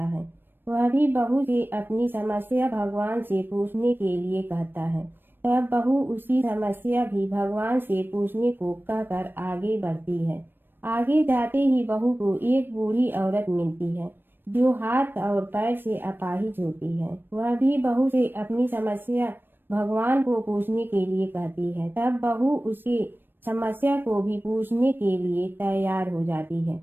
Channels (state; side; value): late; left; 0.096 ms